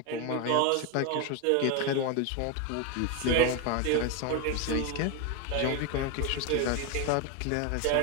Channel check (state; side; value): different; both; correlation 0.02